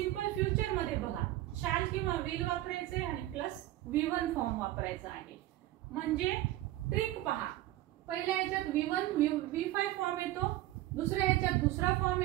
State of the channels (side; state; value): left; quieter; 15.5 dB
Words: फ्युचर मध्ये बघा शॅल किंवा विल वापरायचे आणि प्लस V1 फॉर्म वापरायचा आहे. म्हणजे ट्रिक पहा, पहिल्या ह्याच्यात V5 फॉर्म येतो, दुसऱ्या ह्याच्यात दुसरा फॉर्म